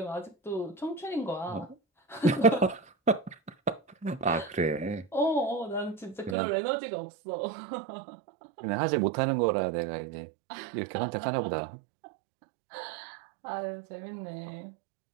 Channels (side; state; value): left; drops out; at 6.4 s